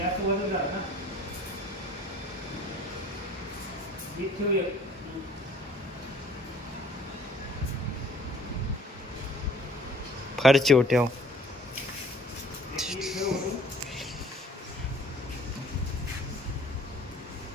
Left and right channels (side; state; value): both; normal; correlation 0.54